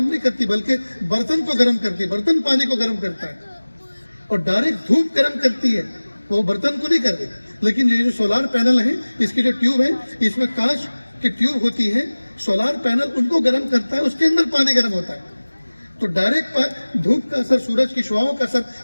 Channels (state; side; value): inverted; both; correlation -1.00